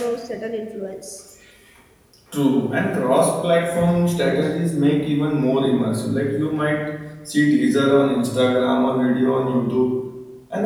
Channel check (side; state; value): both; identical; correlation 1.00